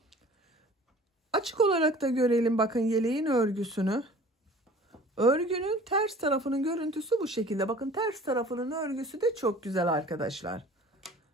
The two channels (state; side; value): normal; both; correlation 0.47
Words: Açık olarak da görelim bakın yeleğin örgüsünü. Örgünün ters tarafının görüntüsü bu şekilde. Bakın ters tarafının örgüsü de çok güzel arkadaşlar.